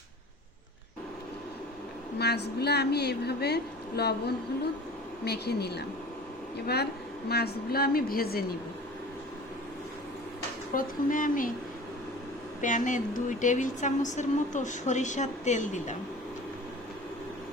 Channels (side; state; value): both; normal; correlation 0.41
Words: মাছগুলো আমি এইভাবে লবণ হলুদ মেখে নিলাম। এবার মাছগুলো আমি ভেজে নিব। প্রথমে আমি প্যানে 2 টেবিল চামচের মতো সরিষার তেল দিলাম।